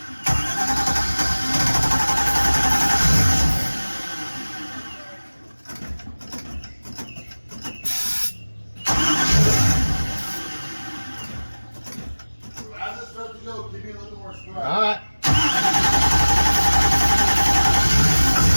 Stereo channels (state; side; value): inverted; both; correlation -1.00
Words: As it starts to go, give me a little more stride. All right.